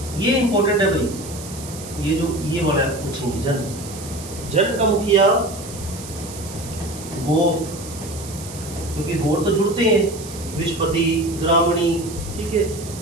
ये इंपॉर्टेंट है भाई, ये जो ये वाला पूछेंगे। जन। जन का मुखिया गोप, क्योंकि गोर तो जुड़ते हैं। विश्वपति, ग्रामणी, ठीक है।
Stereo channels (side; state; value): right; noise; hiss, 14 dB below the sound